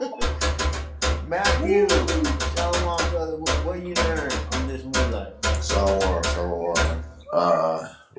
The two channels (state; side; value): identical; both; correlation 1.00